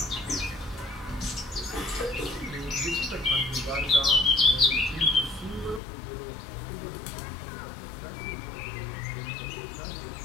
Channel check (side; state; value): right; drops out; at 5.8 s